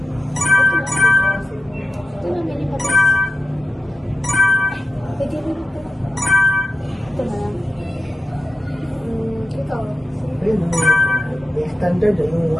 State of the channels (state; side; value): normal; both; correlation 0.91